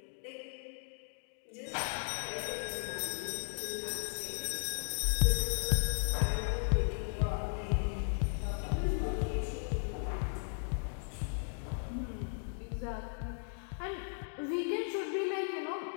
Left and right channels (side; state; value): right; silent; digital silence